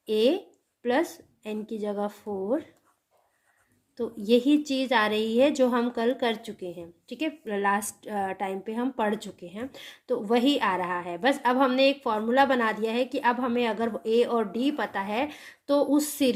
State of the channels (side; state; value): both; identical; correlation 1.00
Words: A प्लस n की जगह 4. तो यही चीज़ आ रही है जो हम कल कर चुके हैं, ठीक है, लास्ट टाइम पे हम पढ़ चुके हैं. तो वही आ रहा है. बस अब हमने एक फॉर्मूला बना दिया है कि अब हमें अगर ए और डी पता है तो उस